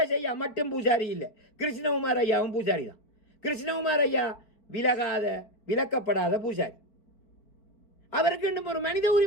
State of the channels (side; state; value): right; late; 4.8 ms